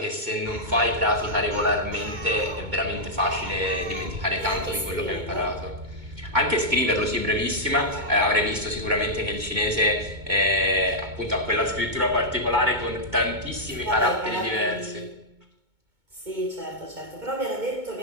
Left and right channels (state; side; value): late; left; 2.2 ms